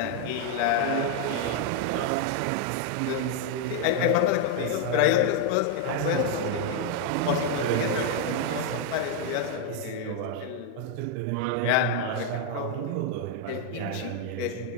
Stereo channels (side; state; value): both; different; correlation 0.00